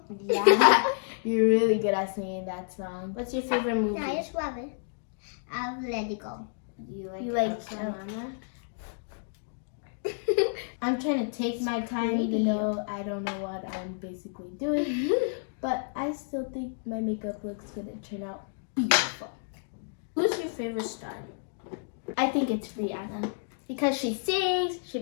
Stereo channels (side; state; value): right; silent; digital silence